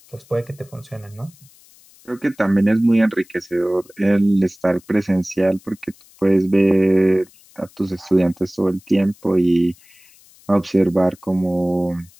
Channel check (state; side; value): noise; left; hiss, 27 dB below the sound